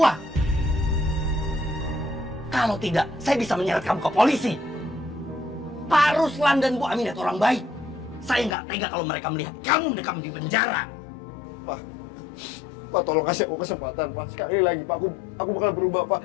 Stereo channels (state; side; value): drops out; right; at 8.6 s